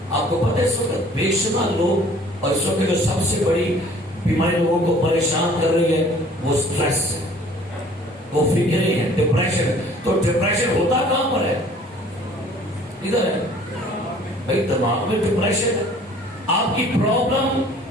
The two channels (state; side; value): normal; both; correlation 0.53